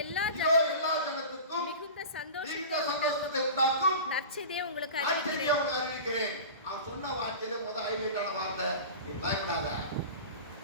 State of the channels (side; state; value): both; inverted; correlation -0.34